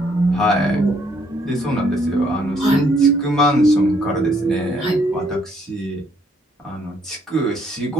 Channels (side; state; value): both; normal; correlation 0.68